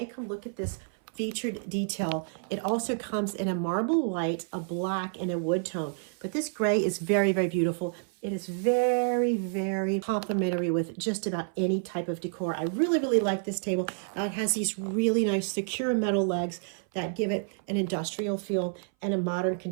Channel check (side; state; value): left; silent; 58 dB below the other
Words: Come look at this featured detail. It also comes in a marble white, a black, and a wood tone. But this gray is very, very beautiful. It is very, very complementary with just about any type of decor. I really, really like this table. It has these really nice secure metal legs that give it an industrial feel and a modern